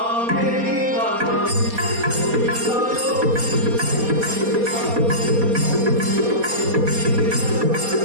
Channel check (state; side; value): late; left; 4.2 ms